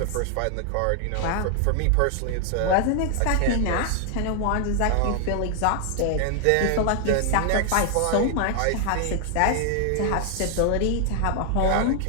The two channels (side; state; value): both; different; correlation 0.00